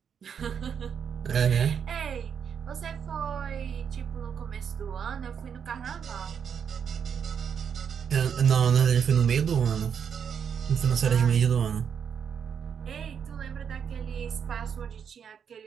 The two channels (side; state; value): left; quieter; 7.4 dB